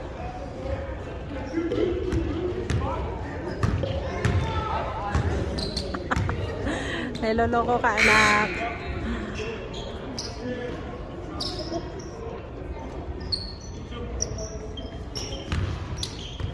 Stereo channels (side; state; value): both; identical; correlation 1.00